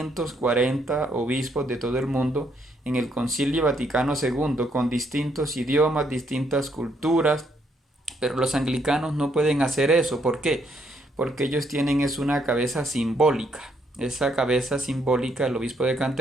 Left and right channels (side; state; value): both; normal; correlation 0.72